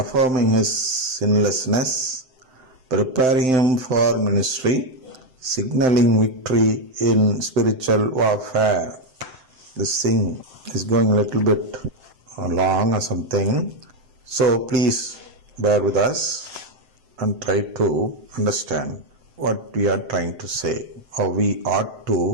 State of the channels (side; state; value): left; late; 7.8 ms